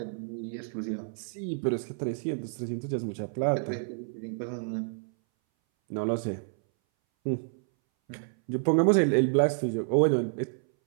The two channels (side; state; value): left; silent; 58 dB below the other